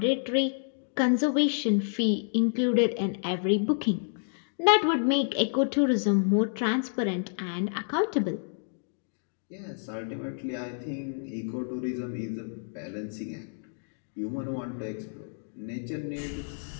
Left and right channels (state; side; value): silent; right; digital silence